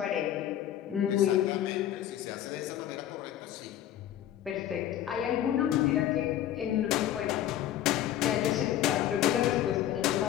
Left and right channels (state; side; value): quieter; right; 11.8 dB